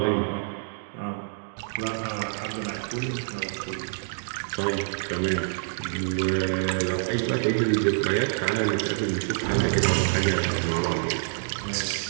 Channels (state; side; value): silent; left; digital silence